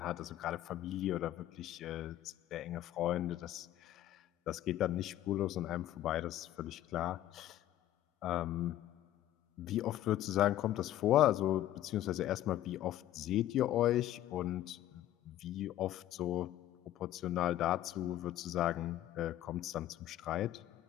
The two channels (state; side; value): quieter; right; 13.4 dB